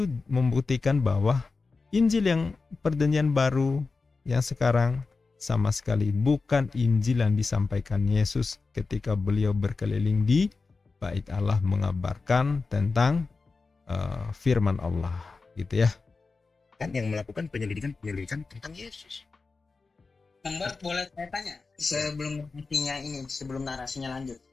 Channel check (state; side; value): quieter; right; 4.1 dB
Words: membuktikan bahwa Injil yang Perjanjian Baru yang sekarang sama sekali bukan Injil yang disampaikan Yesus ketika beliau berkeliling di bait Allah mengabarkan tentang firman Allah gitu ya. Kan yang melakukan penyelidikan tentang Yesus. Mbak, boleh saya tanya sebelum narasinya lanjut.